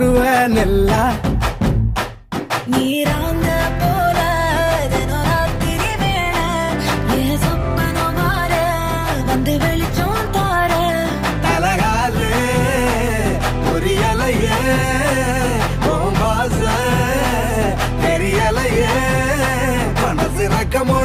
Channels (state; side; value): identical; both; correlation 1.00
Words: நெல்லா நீராங்க போல தினராத்திரி வேள என் சொப்பனம் மாற வந்து வெளிச்சம் தார தலகாலே புரியலையே பாச தெரியலையே மனசு ரக்க